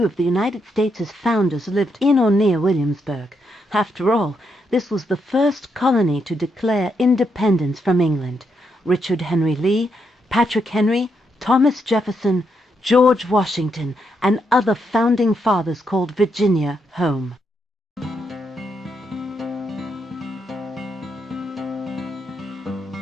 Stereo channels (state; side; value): normal; both; correlation 0.80